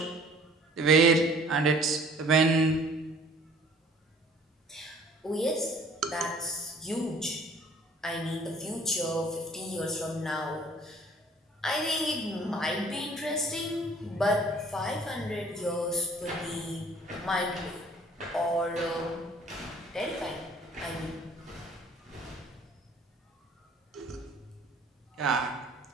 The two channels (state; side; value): normal; both; correlation 0.53